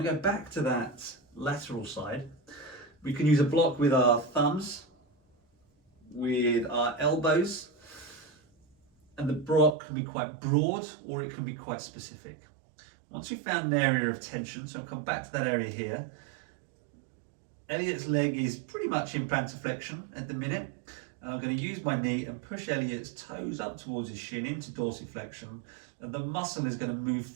to go back to that lateral side. We can use a block with our thumbs, with our elbows, and the block can be quite broad or it can be quite specific. Once we've found an area of tension, so I'll come back to that area here. Elliot's leg is pretty much in plantar flexion at the minute. And I'm going to use my knee and push Elliot's toes up towards his shin into dorsiflexion. And the muscle is going to move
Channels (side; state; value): left; drops out; at 9.8 s